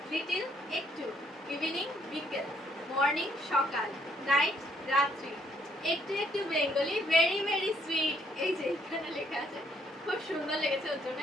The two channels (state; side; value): normal; both; correlation 0.68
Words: লিটিল একটু, ইভিনিং বিকেল, মর্নিং সকাল, নাইট রাত্রি, একটু একটু বেঙ্গলি, ভেরি ভেরি সুইট। এই যে এখানে লেখা আছে, খুব সুন্দর লেগেছে, ওর জন্য